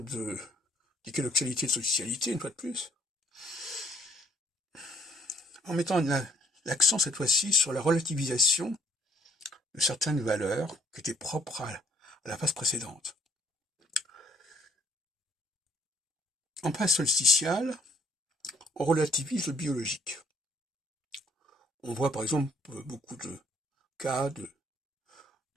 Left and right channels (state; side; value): normal; both; correlation 0.64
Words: d'équinoxialité et de solsticialité, une fois de plus, en mettant l'accent cette fois-ci sur la relativisation de certaines valeurs qui étaient propres à la phase précédente. En phase solsticiale, on relativise le biologique. On voit par exemple beaucoup de cas de